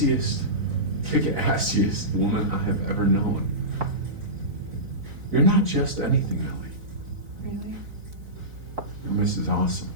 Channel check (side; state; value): left; late; 3.9 ms